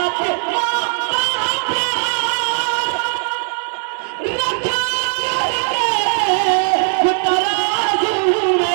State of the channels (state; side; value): silent; left; 67 dB below the other